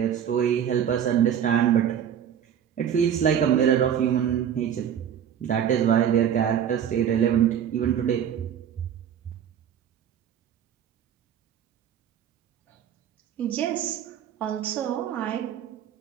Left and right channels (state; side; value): quieter; left; 9.1 dB